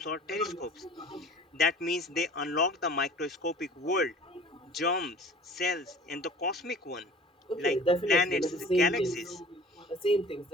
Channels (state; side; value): normal; both; correlation 0.45